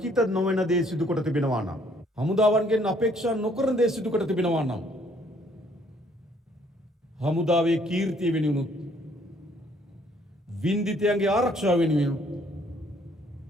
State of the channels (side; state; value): both; normal; correlation 0.63